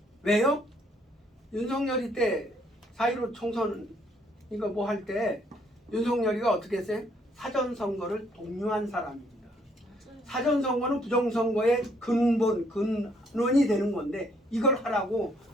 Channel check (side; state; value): both; normal; correlation 0.67